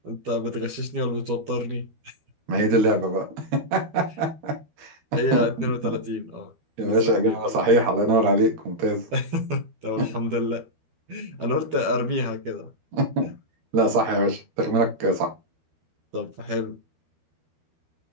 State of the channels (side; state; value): left; late; 13 ms